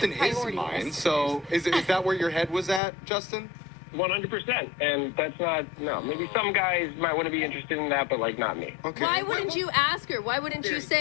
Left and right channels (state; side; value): drops out; right; at 2.8 s